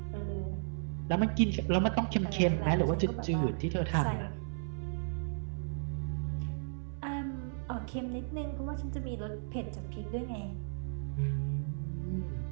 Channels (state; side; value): silent; left; 55 dB below the other